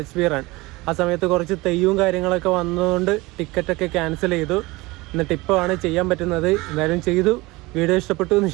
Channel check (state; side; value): quieter; left; 22.0 dB